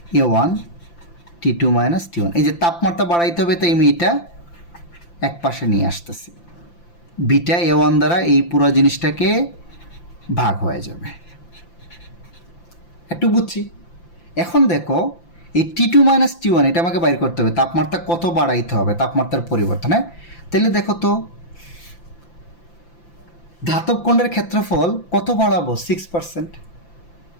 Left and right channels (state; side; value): late; right; 5.8 ms